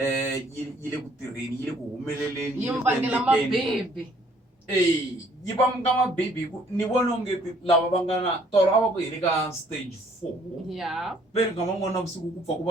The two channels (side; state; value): both; normal; correlation 0.61